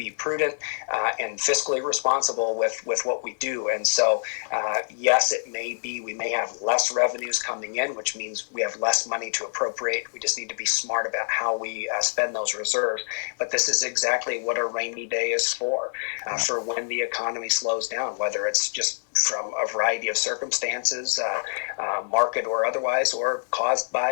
prudent and fiscally responsible with what we do. And so yes, it may be we may have less revenues coming in, which means we have less money to appropriate. We just need to be smart about how we spend those reserves. But this is exactly what a rainy day is for when the economy slows down, whether it's just from a variety of circumstances, market or otherwise, or caused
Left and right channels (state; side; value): silent; right; digital silence